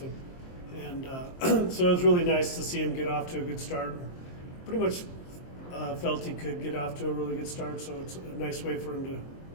and so it was really nice to see him get off to a good start. Pretty much felt he could get off to a really good start, so it's a nice way for him to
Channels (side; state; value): right; late; 23 ms